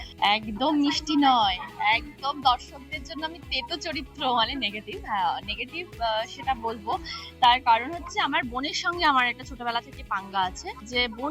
একদম মিষ্টি নয়, একদম দর্শকদের জন্য আমি তেতো চরিত্র, মানে নেগেটিভ। নেগেটিভ সেটা বলবো। তার কারণ হচ্ছে আমার বোনের সঙ্গে আমার একটা ছোটবেলা থেকে পাঙ্গা আছে, যে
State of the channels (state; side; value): identical; both; correlation 1.00